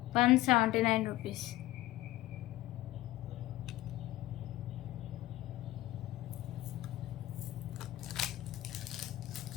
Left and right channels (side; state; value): right; quieter; 16.4 dB